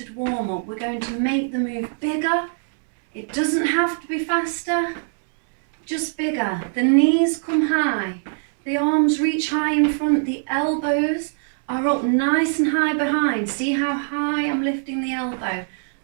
warm-up. We're going to make the move bigger. It doesn't have to be faster, just bigger. The knees come high, the arms reach high in front, the elbows are up nice and high behind. See how high I'm lifting the elbow,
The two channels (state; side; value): silent; left; 64 dB below the other